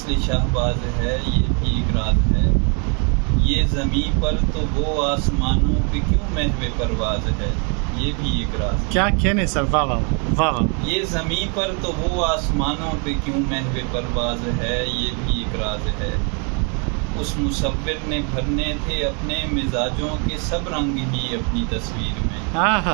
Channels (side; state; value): left; quieter; 36.6 dB